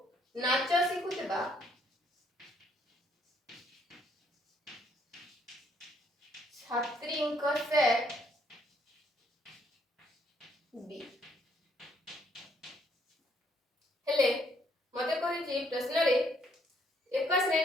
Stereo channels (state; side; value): normal; both; correlation 0.69